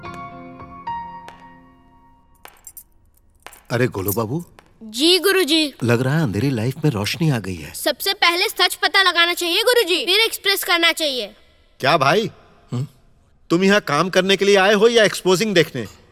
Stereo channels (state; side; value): identical; both; correlation 1.00